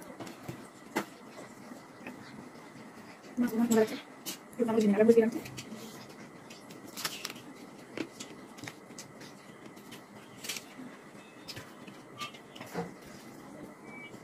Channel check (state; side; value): identical; both; correlation 1.00